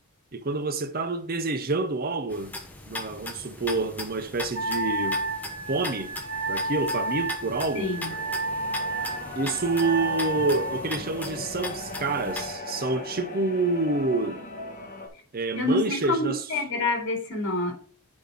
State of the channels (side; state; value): both; normal; correlation 0.01